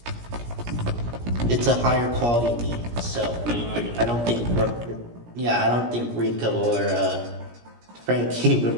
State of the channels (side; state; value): left; late; 17 ms